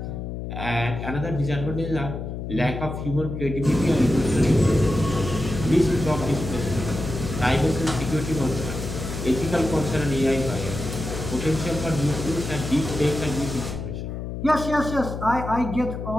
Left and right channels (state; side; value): noise; left; hum, 6 dB below the sound